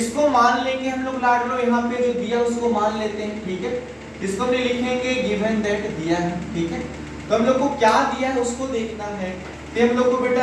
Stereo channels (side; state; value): both; identical; correlation 1.00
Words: मान लेंगे हम लोग, लाड लो यहाँ पे जो दिया उसको मान लेते हैं, ठीक है। इसको हम लिखेंगे गिवन दैट दिया है, ठीक है। तो हम लोग को क्या दिया है उसको देखना है, तो हम लोग को